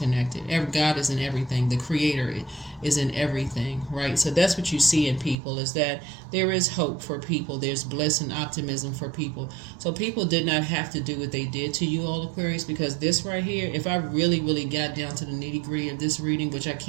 God is in everything. The Creator is in everything, right? So that's what you see in people, is that there is hope for people. There's bliss and optimism for people. So people did not have to do what they did to you all, Aquarius, because this right here, if I really, really got down to the nitty-gritty of this reading, which I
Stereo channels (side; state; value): left; drops out; at 5.4 s